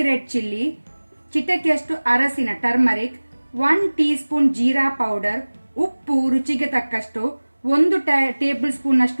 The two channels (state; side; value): inverted; both; correlation -1.00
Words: red chilli, ಚಿಟಕಿಯಷ್ಟು ಅರಸಿನ turmeric, 1 teaspoon jeera powder, ಉಪ್ಪು ರುಚಿಗೆ ತಕ್ಕಷ್ಟು, 1 ಟೇಬಲ್ ಸ್ಪೂನ್